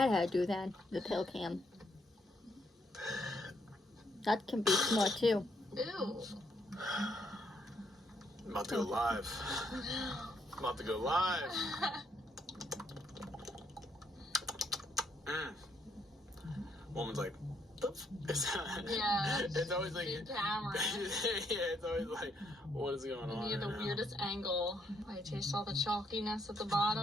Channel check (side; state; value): both; normal; correlation 0.73